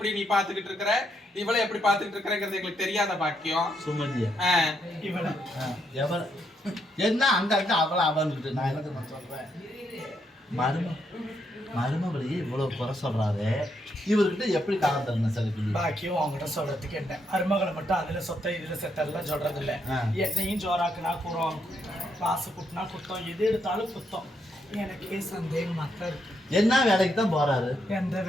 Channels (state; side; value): normal; both; correlation 0.77